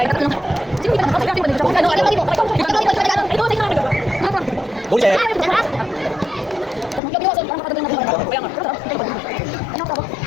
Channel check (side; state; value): right; drops out; at 7.0 s